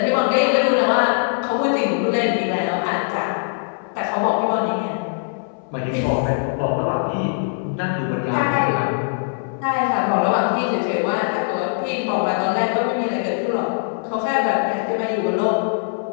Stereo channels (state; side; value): silent; right; 65 dB below the other